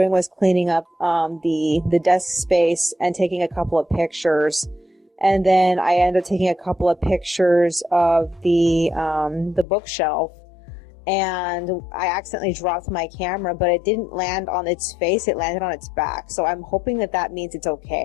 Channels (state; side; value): drops out; right; at 9.7 s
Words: was cleaning up the desk space and taking a couple of pictures. And then I ended up taking a couple of pictures of the bookshelf. And I accidentally dropped my camera, but it didn't land on its face, it landed on its back. So I'm hoping that means it's